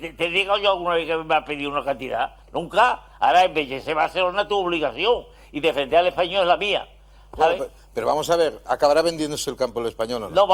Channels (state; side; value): identical; both; correlation 1.00